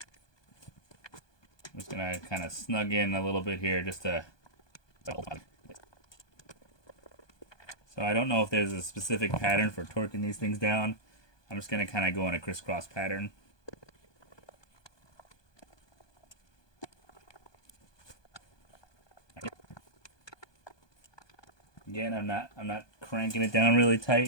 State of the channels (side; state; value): right; late; 1.2 ms